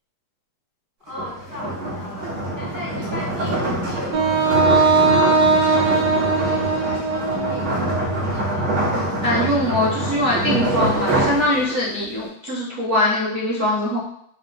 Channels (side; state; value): left; late; 8.2 ms